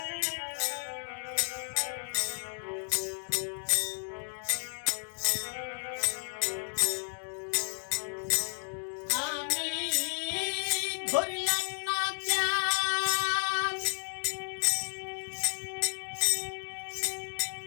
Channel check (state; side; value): silent; right; digital silence